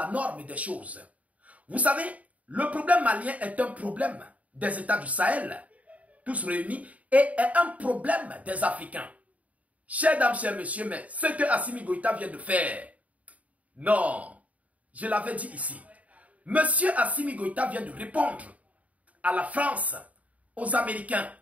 norme des choses. Vous savez, le problème malien est un problème des États du Sahel, tous réunis, et est un problème des Africains. Chers dames, chers messieurs, mais ce que Assimi Goïta vient de faire, non, je l'avais dit ici. Monsieur Assimi Goïta vient de répondre à la France, aux Américains,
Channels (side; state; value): left; late; 0.069 ms